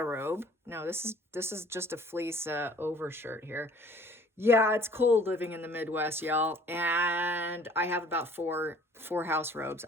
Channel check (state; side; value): normal; both; correlation 0.53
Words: robe. No, this is just a fleece overshirt here. Yeah, it's cold living in the Midwest, y'all. And I have about four house robes.